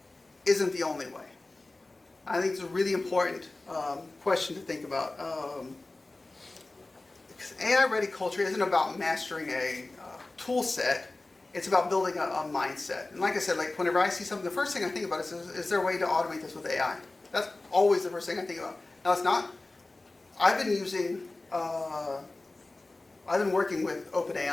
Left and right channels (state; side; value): quieter; right; 3.0 dB